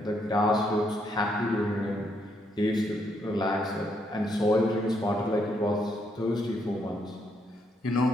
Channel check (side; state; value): both; normal; correlation 0.75